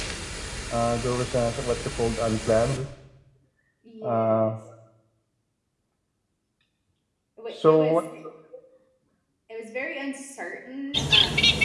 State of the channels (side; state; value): both; identical; correlation 1.00